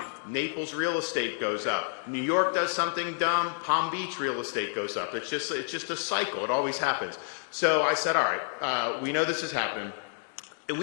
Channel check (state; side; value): silent; right; digital silence